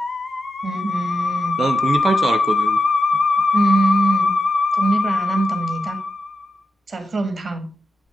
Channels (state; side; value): normal; both; correlation 0.89